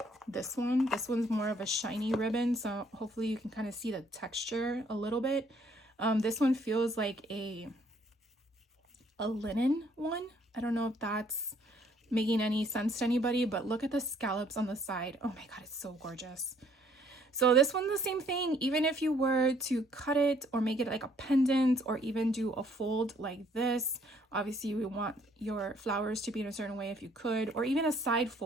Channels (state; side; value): normal; both; correlation 0.64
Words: this one. This one's more of a shiny ribbon, so hopefully you can kind of see the texture a little bit. This one feels like a linen one. I don't know if that's making any sense to anybody, but look at the scallops on the side. Oh my god, it's so gorgeous. So this one's the same thing. Even if you were to cut it or make it like a pendant or even do a fold like this, obviously we want your flowers to be in a certain way if you could, or even a side